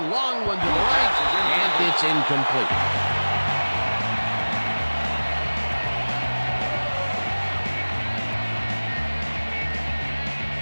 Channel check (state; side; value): inverted; both; correlation -1.00